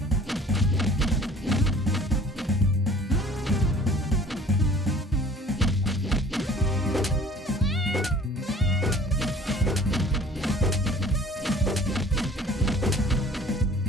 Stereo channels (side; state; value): both; normal; correlation 0.50